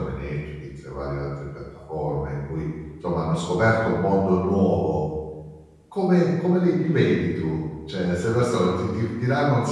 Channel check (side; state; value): both; identical; correlation 1.00